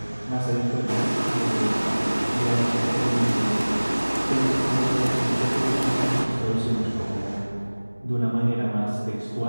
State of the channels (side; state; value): both; inverted; correlation -1.00